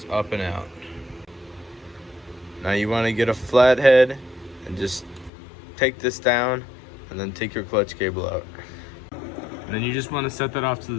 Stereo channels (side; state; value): right; drops out; at 5.3 s